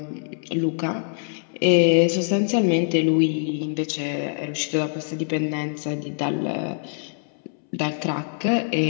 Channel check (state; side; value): silent; right; 63 dB below the other